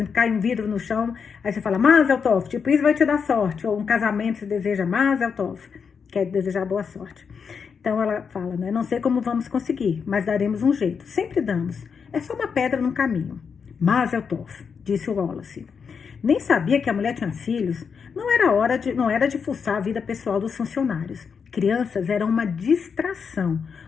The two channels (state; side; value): quieter; right; 6.2 dB